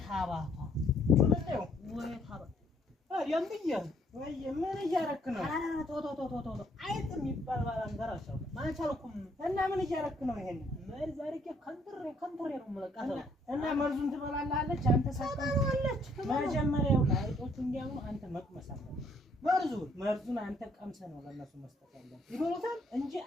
ታባቷ ወለደው ወይ ታባ አሪያም ብዬ ወይ ምን እያረክ ነው? ቶቶቶቶቶ አይጥ የሚባል ባላንጋራ አሻው ማቻልኩም እና ምን እያረክ ነው? ይሄን ምን ዛሬ ከንትሬ ነው የምለቃተው እና መርዙን ትበላለች አንተ ሳታውለች መጀመሪያው አይጦቹ እንዲያው አንተ መቅመስ አለብህ። መርዙን አንተ ቀምሰህ ነው ለነሱ መስጠት ያለብህ። ይበሉታል እንጂ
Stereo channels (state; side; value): normal; both; correlation 0.66